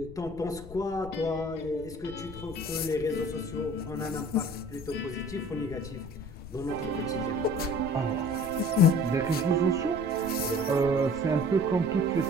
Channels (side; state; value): left; noise; rumble, 15 dB below the sound